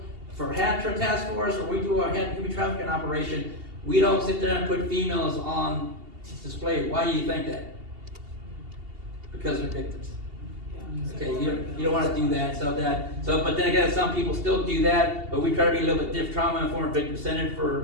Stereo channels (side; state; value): left; late; 2.8 ms